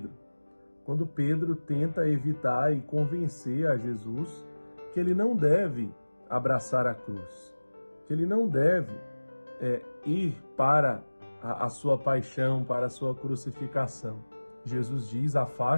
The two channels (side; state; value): both; inverted; correlation -1.00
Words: quando Pedro tenta evitar e convencer a Jesus que ele não deve abraçar a cruz, que ele não deve ir para a sua paixão, para a sua crucificação. Jesus diz: